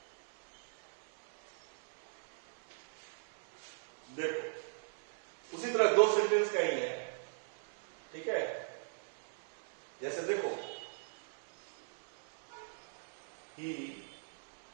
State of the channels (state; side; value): silent; left; 51 dB below the other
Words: देखो उसी तरह दो सेंटेंस का ही है, ठीक है। जैसे देखो, ही